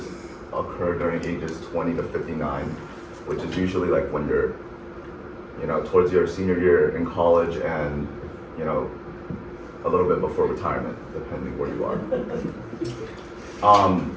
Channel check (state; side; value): identical; both; correlation 1.00